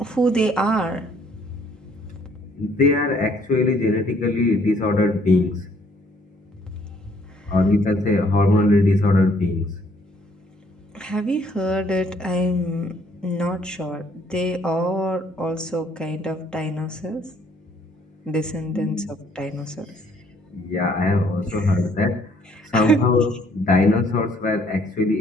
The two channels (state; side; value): normal; both; correlation 0.63